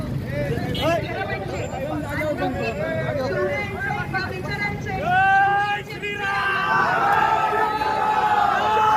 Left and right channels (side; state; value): both; identical; correlation 1.00